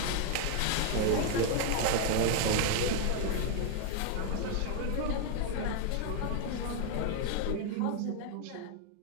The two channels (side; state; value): both; different; correlation 0.00